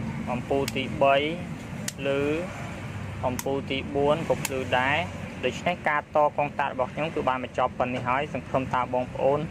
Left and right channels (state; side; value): identical; both; correlation 1.00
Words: អំពូលទី3ភ្លឺអំពូលទី4ក៏ភ្លឺដែរដូច្នេះការតកងតាក់របស់ខ្ញុំគឺបានបញ្ចប់ប៉ុណ្នេះហើយសង្ឃឹមថាបងប្អូន